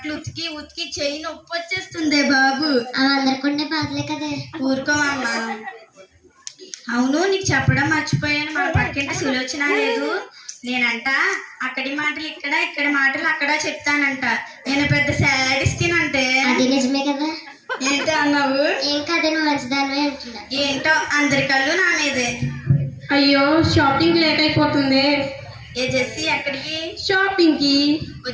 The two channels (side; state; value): both; identical; correlation 1.00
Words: ఉతికి ఉతికి చెయ్యి నొప్పి వచ్చేస్తుంది బాబు. అవి అందరికుండే బాధలే కదా. ఊరుకోమమ్మా. అవును, నీకు చెప్పడం మర్చిపోయాను, మా పక్కింటి సులోచన లేదు, నేనంట అక్కడి మాటలు ఇక్కడ, ఇక్కడి మాటలు అక్కడ చెప్తానంట. నేను పెద్ద శాడిస్టినంటే. అది నిజమే కదా. ఏంటో అన్నావు? ఏం కాదు, నువ్వు మంచిదానివే అంటున్నా. ఏంటో అందరి కళ్ళు నా మీదే. అయ్యో, షాపింగ్ లేట్ అయిపోతుంది. ఏ జెస్సీ, ఎక్కడికి? షాపింగ్ కి.